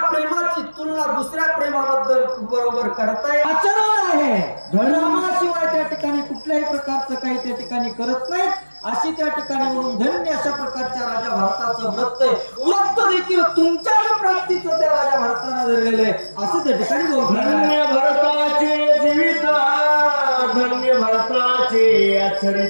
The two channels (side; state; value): both; inverted; correlation -1.00